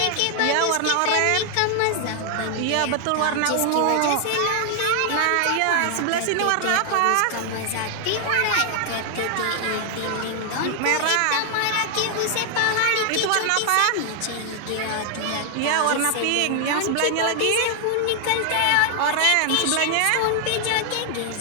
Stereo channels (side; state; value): both; different; correlation 0.00